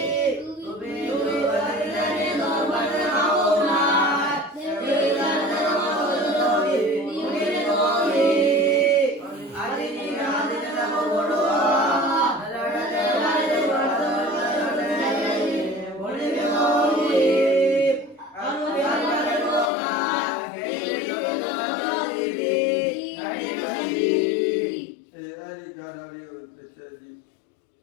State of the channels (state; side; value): drops out; right; at 19.7 s